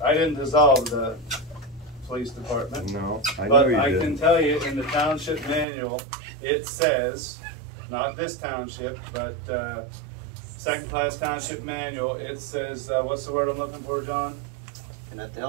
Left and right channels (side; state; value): left; drops out; at 5.7 s